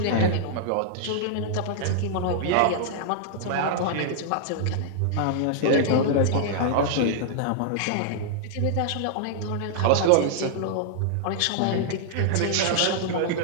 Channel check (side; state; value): both; different; correlation -0.01